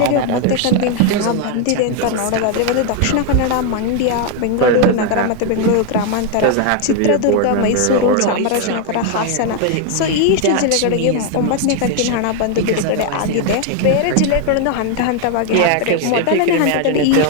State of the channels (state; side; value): different; both; correlation 0.01